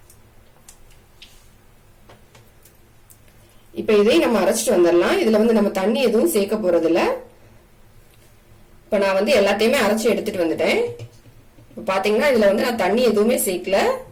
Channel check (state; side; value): identical; both; correlation 1.00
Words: இப்ப இதையும் நம்ம அரைச்சிட்டு வந்துடலாம். இதுல நம்ம தண்ணி எதுவும் சேர்க்க போறது இல்ல. இப்ப நான் எல்லாத்தையுமே அரைச்சி எடுத்துட்டு வந்துட்டேன். பாத்தீங்கன்னா இதுல நான் தண்ணி எதுவுமே